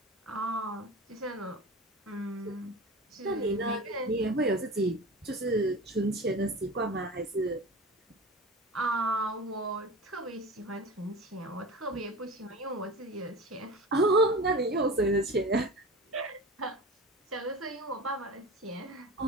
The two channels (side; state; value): both; normal; correlation 0.33